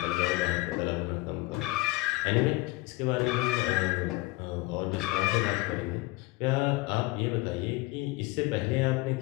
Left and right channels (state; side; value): quieter; right; 21.6 dB